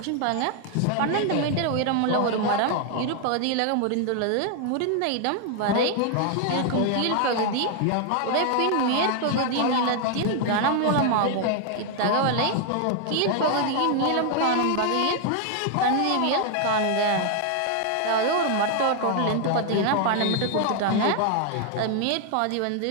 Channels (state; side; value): different; both; correlation 0.00